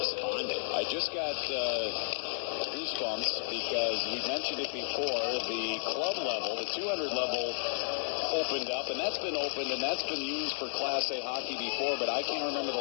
I just got goosebumps because we mentioned it before. The club level, the 200 level, opened up, and that's been opened, and that's been used for Class A hockey before, but I can't remember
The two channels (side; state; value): right; silent; digital silence